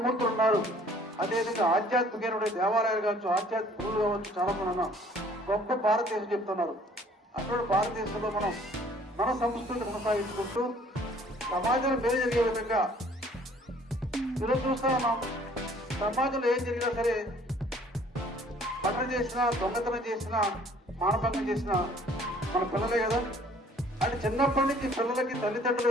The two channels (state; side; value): normal; both; correlation 0.57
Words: ఉన్నారు. అదేవిధంగా ఆధ్యాత్మికమైన దేవాలయాలు కావచ్చు, ఆధ్యాత్మిక గురువులు కావచ్చు, చాలా మంది ఉన్నాం. గొప్ప భారతదేశం చెప్తున్నారు. అటువంటి భారతదేశంలో మనం మన సంస్కృతిని కొనసాగించుకుంటూ సమాజంలో మేలు జరిగే విధంగా ఈరోజు చూస్తా ఉన్నాం. సమాజంలో ఏం జరిగినా సరే, మర్డర్ చేసినా, దొంగతనం చేసినా, మానభంగం చేసినా మన పిల్లలే కదా. అంటే చిన్నప్పటి నుంచి పిల్లలకి